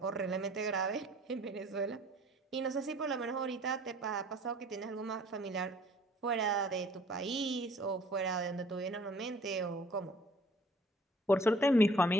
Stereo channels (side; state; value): both; normal; correlation 0.54